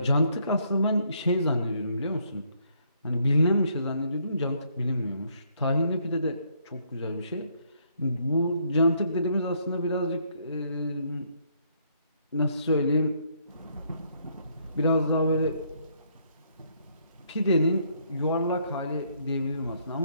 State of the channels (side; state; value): both; inverted; correlation -0.70